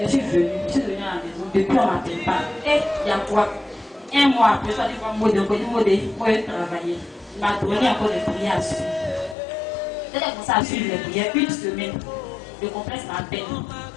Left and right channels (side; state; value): right; drops out; at 9.3 s